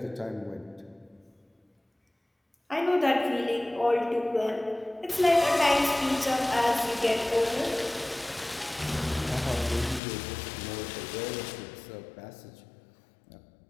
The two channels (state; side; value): drops out; right; at 10.0 s